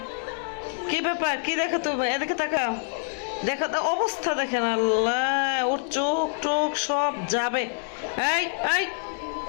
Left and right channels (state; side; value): silent; right; 61 dB below the other